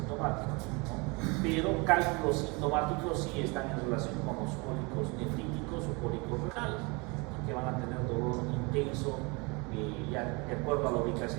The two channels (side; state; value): left; quieter; 28.3 dB